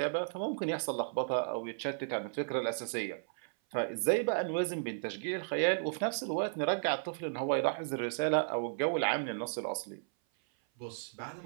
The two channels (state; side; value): silent; left; 55 dB below the other